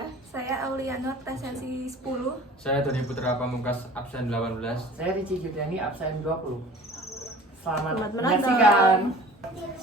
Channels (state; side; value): normal; both; correlation 0.45